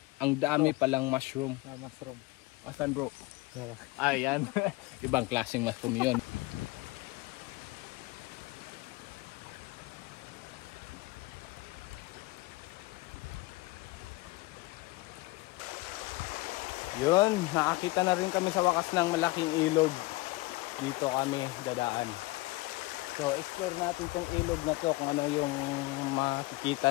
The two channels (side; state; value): right; quieter; 21.6 dB